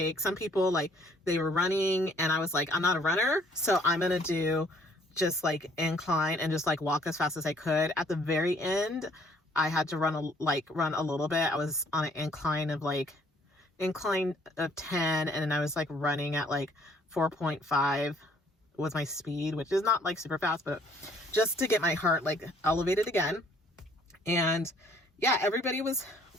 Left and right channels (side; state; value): both; normal; correlation 0.61